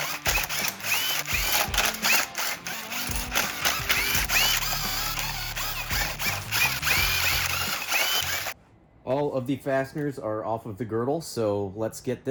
All of the fasteners are off of the girdle, so let's get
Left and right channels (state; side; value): identical; both; correlation 1.00